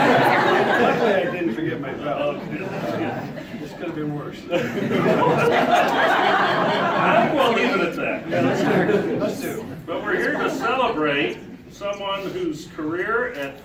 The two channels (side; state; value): both; identical; correlation 1.00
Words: Luckily, I didn't forget my belt. This could have been worse. I think we'll leave it at that. Yeah, let's do. But we're here to celebrate someone whose career at